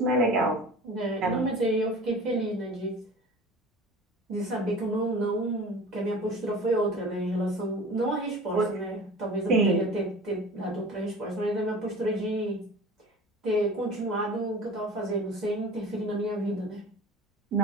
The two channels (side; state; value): both; normal; correlation 0.40